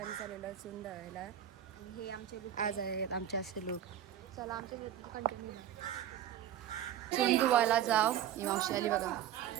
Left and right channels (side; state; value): left; quieter; 10.7 dB